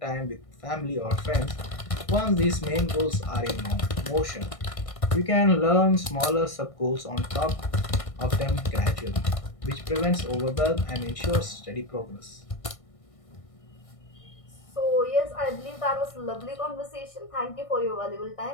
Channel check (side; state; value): right; late; 1.6 ms